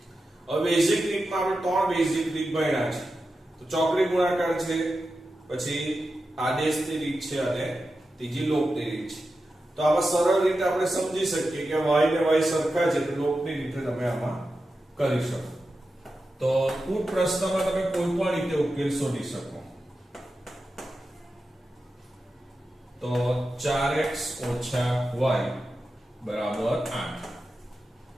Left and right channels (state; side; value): normal; both; correlation 0.91